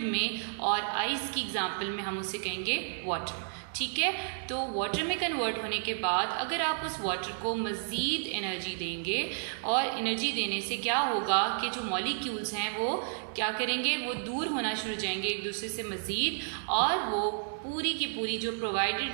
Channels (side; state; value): left; silent; digital silence